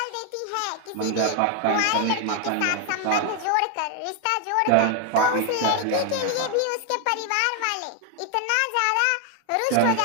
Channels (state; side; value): different; both; correlation 0.01